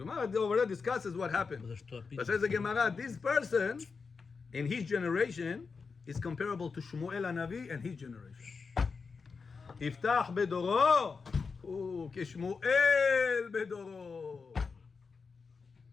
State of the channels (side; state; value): right; quieter; 5.0 dB